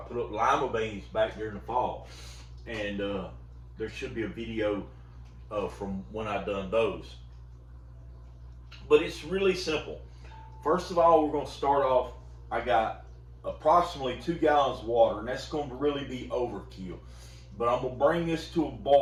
up lima beans back during the fall, and there should be a video from when I done those. But it's really simple. First of all, we're going to start off. I got approximately 2 gallons of water, and that's going to really be overkill. But I'm going to bring this to a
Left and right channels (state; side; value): identical; both; correlation 1.00